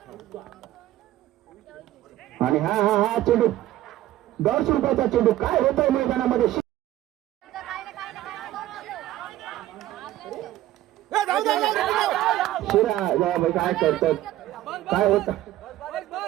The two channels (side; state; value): left; quieter; 14.5 dB